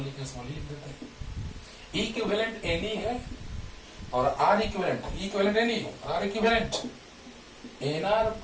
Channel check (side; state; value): both; identical; correlation 1.00